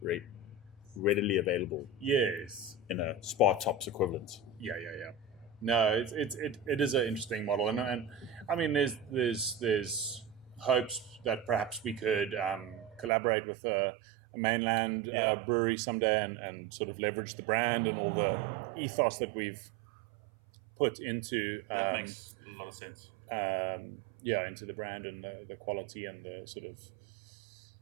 readily available. Yes. In a Spa Tops equivalent. Yeah. No, it is an interesting model, and I mean, there's hopes that perhaps we could collaborate with a mainland brewery someday and sort of leverage the brand and all the ethos that we've put into that makes a lot of sense. Into the brand and the quality and the sort of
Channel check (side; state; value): left; drops out; at 13.1 s